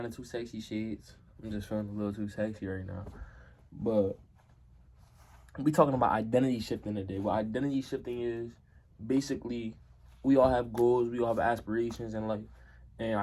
the too sexy shades. I'm just feeling a little too sexy right now. But we talking about identity shifting today. What identity shifting is, basically, we all have goals, we all have aspirations in life. And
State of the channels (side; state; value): both; identical; correlation 1.00